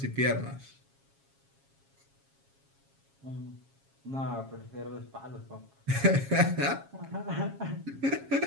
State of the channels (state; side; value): late; left; 7.3 ms